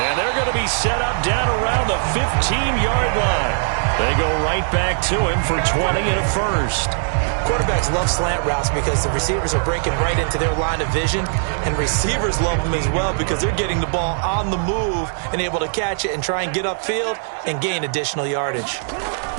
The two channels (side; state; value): left; silent; digital silence